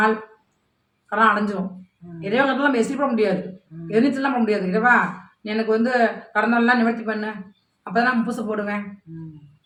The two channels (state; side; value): identical; both; correlation 1.00